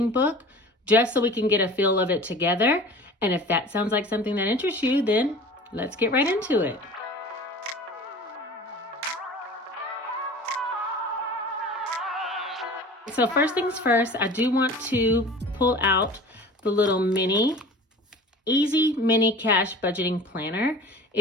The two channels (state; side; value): normal; both; correlation 0.40